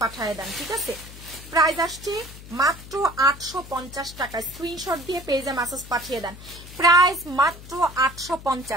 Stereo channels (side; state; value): left; noise; hum, 16 dB below the sound